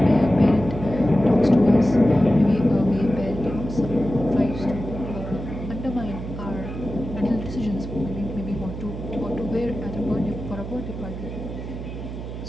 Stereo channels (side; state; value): right; noise; hum, 8 dB below the sound